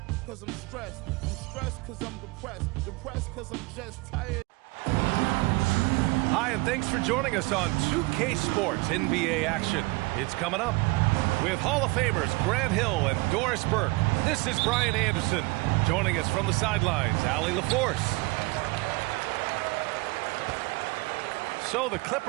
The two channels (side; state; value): left; quieter; 24.6 dB